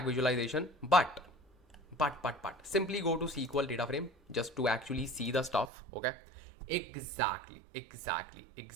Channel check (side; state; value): left; drops out; at 5.7 s